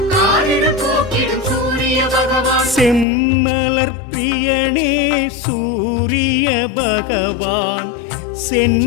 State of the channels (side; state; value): right; drops out; at 3.1 s